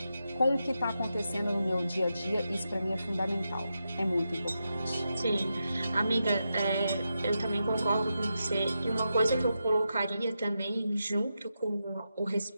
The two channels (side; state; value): both; inverted; correlation -0.87